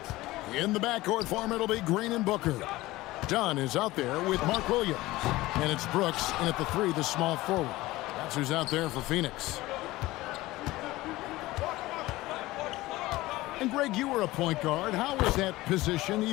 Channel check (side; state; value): right; quieter; 18.5 dB